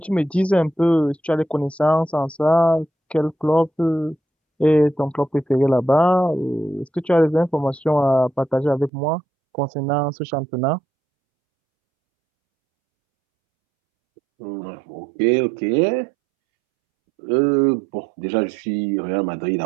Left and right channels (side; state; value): left; drops out; at 8.9 s